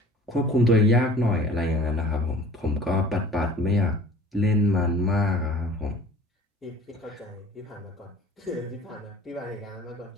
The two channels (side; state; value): both; normal; correlation 0.46